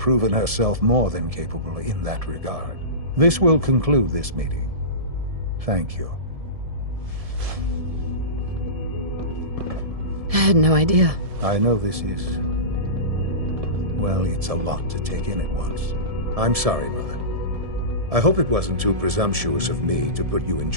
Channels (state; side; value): late; left; 1.7 ms